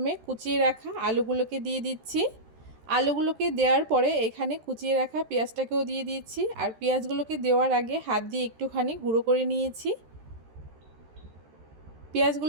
কুচিয়ে রাখা আলুগুলোকে দিয়ে দিচ্ছি। আলুগুলোকে দেওয়ার পরে এখানে কুচিয়ে রাখা পেঁয়াজটাকেও দিয়ে দিচ্ছি। আর পেঁয়াজগুলোকে দেওয়ার আগে হাত দিয়ে একটুখানি গুঁড়ো করে নিয়েছি।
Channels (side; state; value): left; late; 13 ms